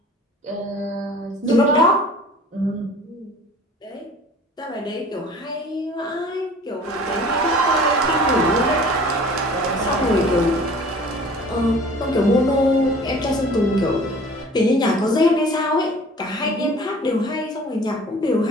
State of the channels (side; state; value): both; normal; correlation 0.47